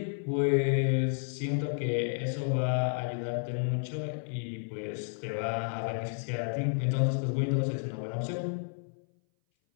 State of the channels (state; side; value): silent; right; 57 dB below the other